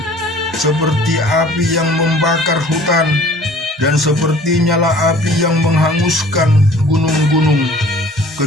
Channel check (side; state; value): both; normal; correlation 0.50